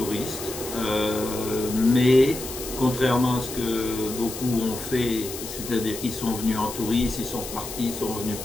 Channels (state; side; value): noise; left; hiss, 9 dB below the sound